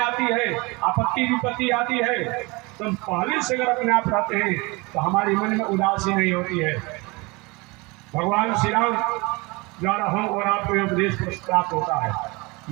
है, आपत्ति विपत्ति आती है, तो हम पहले से अगर अपने आप रहते हैं तो हमारे मन में उदासी नहीं होती है। भगवान श्री राम द्वारा हम और आपको उपदेश प्राप्त होता है।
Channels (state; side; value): quieter; left; 25.8 dB